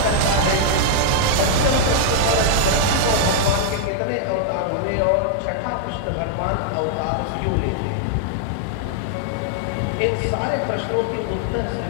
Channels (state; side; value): different; both; correlation -0.01